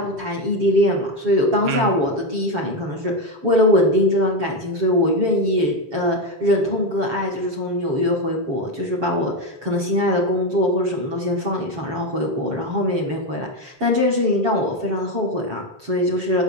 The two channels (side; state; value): left; late; 7.2 ms